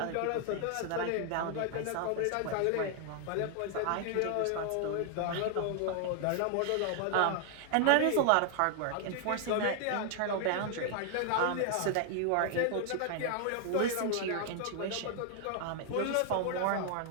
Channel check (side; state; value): both; different; correlation 0.00